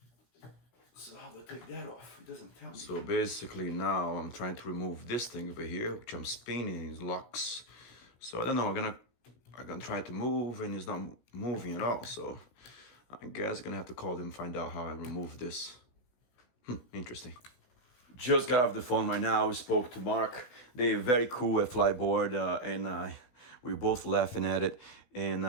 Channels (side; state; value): right; late; 17 ms